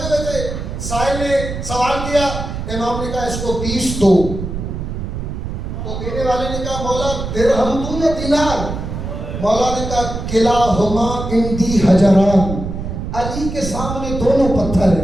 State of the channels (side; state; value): right; noise; rumble, 6 dB below the sound